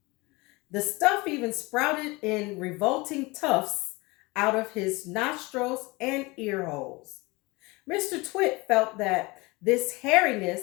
The stuff even sprouted in revolting tufts out of his nostrils and ear holes. Mr. Twit felt that this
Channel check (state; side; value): quieter; right; 24.1 dB